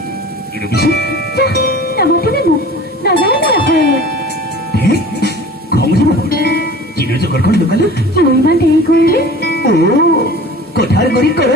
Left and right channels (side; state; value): both; normal; correlation 0.41